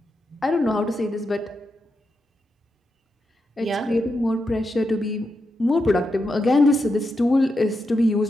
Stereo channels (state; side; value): normal; both; correlation 0.86